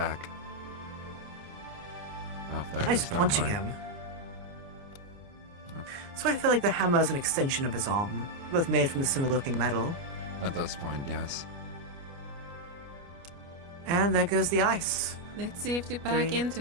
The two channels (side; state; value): left; late; 29 ms